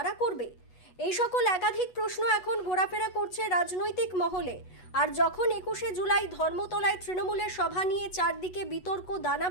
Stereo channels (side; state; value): right; late; 8.2 ms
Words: করবে? এই সকল একাধিক প্রশ্ন এখন ঘোরাফেরা করছে রাজনৈতিক মহলে। আর যখন 21শে জুলাই ধর্মতলায় তৃণমূলের সভা নিয়ে চারদিকে বিতর্ক দানা